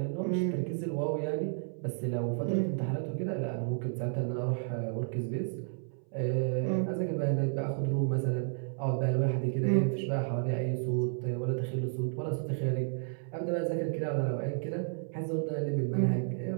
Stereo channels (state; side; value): silent; left; 56 dB below the other